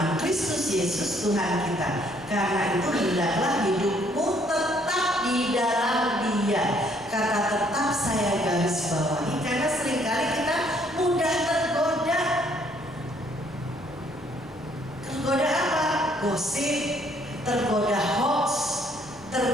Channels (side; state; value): left; noise; hum, 26 dB below the sound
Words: Kristus Yesus Tuhan kita. Karena itu hendaklah hidupmu tetap di dalam Dia. Kata tetap saya garis bawahi karena seringkali kita mudah tergoda. Tergoda apa? Gosip, tergoda hoax,